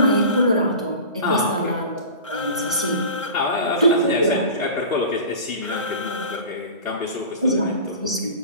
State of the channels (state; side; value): inverted; both; correlation -0.36